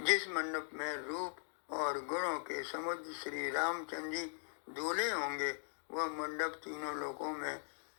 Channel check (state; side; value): silent; right; digital silence